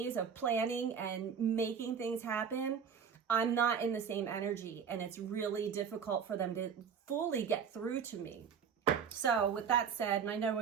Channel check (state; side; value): quieter; left; 7.0 dB